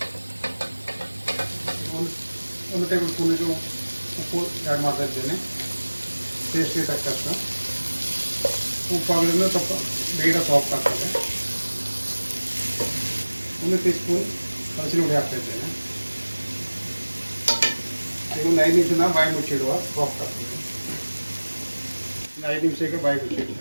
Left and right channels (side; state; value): both; inverted; correlation -1.00